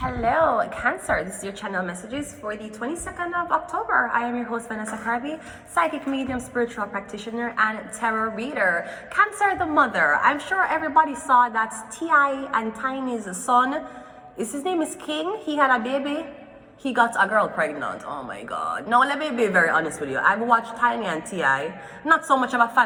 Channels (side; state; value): both; identical; correlation 1.00